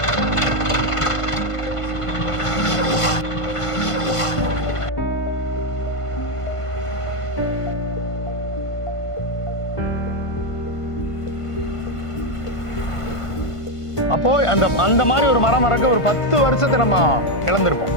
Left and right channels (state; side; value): late; right; 1.5 ms